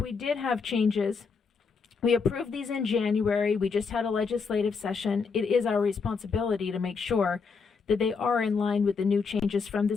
did have changes, we approved these in January, we just had a legislative session. It is our responsibility to make sure that they are in line with the new changes from the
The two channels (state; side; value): quieter; right; 5.1 dB